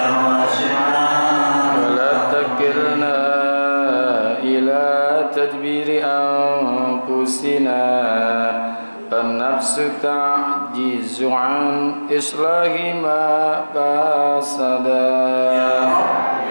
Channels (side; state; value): both; inverted; correlation -1.00